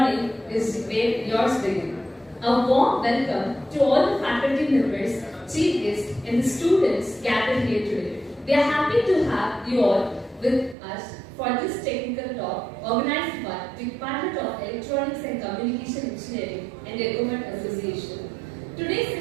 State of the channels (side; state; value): left; drops out; at 10.8 s